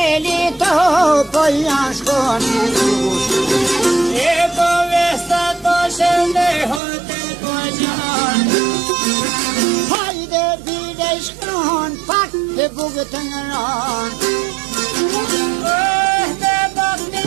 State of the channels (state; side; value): drops out; left; at 6.8 s